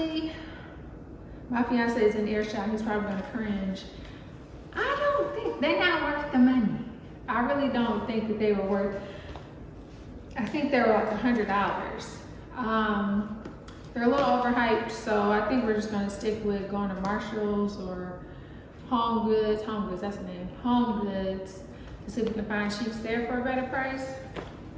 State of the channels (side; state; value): both; identical; correlation 1.00